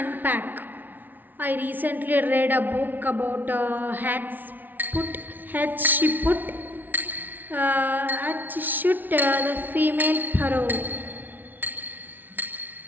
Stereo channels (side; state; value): left; late; 0.085 ms